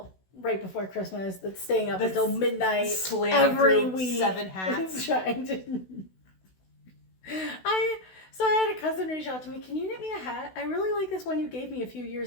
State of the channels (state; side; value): late; right; 16 ms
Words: right before Christmas that's staying up until midnight every week. 7 hats. Trying to. So I had a cousin reach out to me. Can you knit me a hat? I really like this one you gave me a few